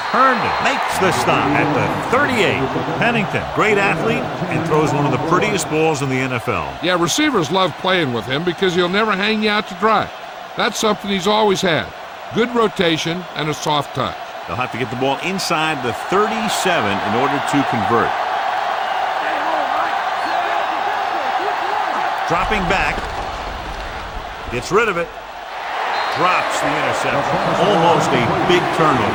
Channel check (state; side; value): identical; both; correlation 1.00